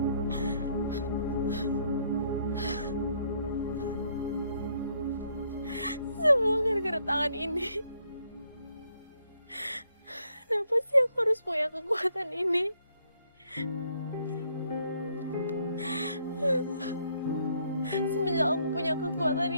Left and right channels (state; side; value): inverted; both; correlation -0.70